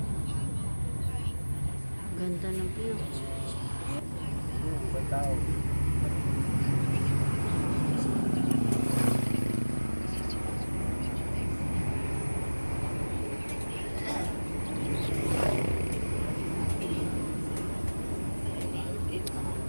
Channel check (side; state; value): both; inverted; correlation -1.00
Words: Ganda ng view.